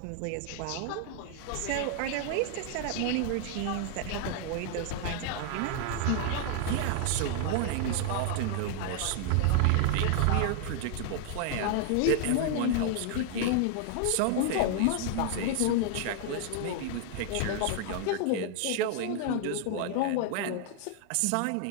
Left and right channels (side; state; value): both; different; correlation 0.00